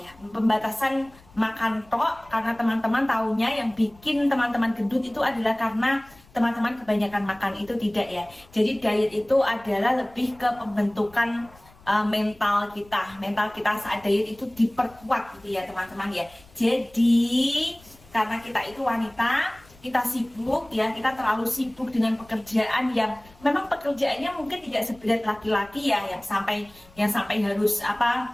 pembatasan makan tok, karena teman-teman tahunya yang bikin teman-teman gendut itu adalah karena teman-teman kebanyakan makan. Itu tidak ya. Jadi diet itu adalah lebih ke pembentukan mental kita saat diet itu diperkuat gitu ya teman-teman ya. Jadi karena kita itu wanita, kita sibuk ya, kita terlalu sibuk dengan pekerjaan yang memang pekerjaannya mungkin tidak seberat laki-laki ya, yang sampai harus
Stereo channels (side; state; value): left; noise; rumble, 26 dB below the sound